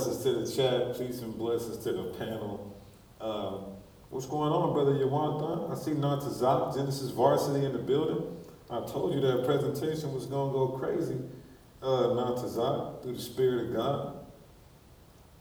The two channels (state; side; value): identical; both; correlation 1.00